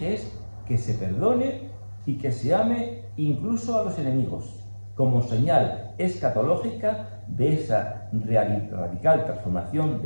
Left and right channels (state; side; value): inverted; both; correlation -1.00